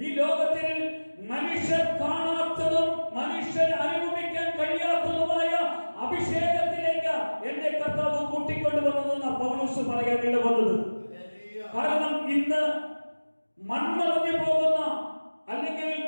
ഈ ലോകത്തിൽ മനുഷ്യർ കാണാത്തതും മനുഷ്യർ അനുഭവിക്കാൻ കഴിയാത്തതുമായ അഭിഷേകത്തിലേക്ക് എന്നെ കർത്താവ് കൂട്ടിക്കൊണ്ടുവന്നതെന്ന് പൗലോസ് പറയാൻ ഇടവന്നത്. കാരണം ഇന്ന് മൺമറഞ്ഞു പോകുന്ന, അല്ലെങ്കിൽ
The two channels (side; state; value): both; inverted; correlation -1.00